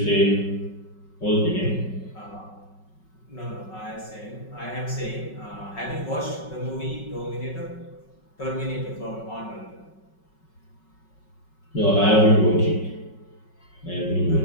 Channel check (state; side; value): late; right; 5.4 ms